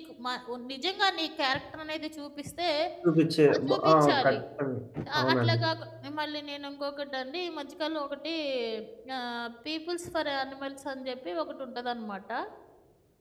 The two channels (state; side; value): identical; both; correlation 1.00